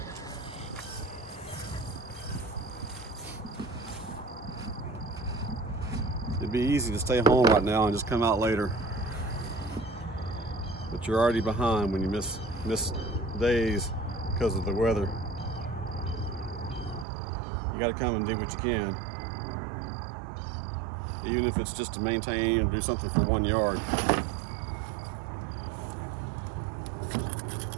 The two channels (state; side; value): drops out; left; at 17.1 s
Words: It'd be easy to stay home right now and just come out later, but you're already behind when you miss days because of the weather. You got to come and do what you can, even if it's just to maintain and do something for 1 yard.